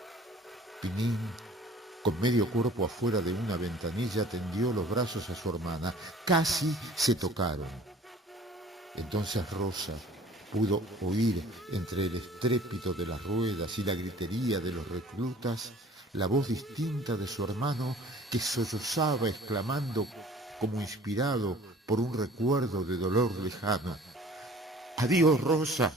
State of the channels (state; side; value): normal; both; correlation 0.49